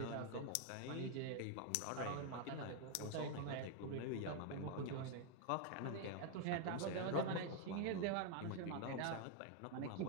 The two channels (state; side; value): different; both; correlation 0.00